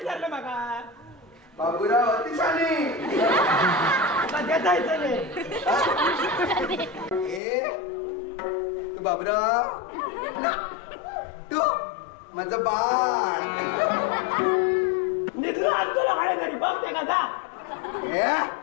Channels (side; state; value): right; drops out; at 7.4 s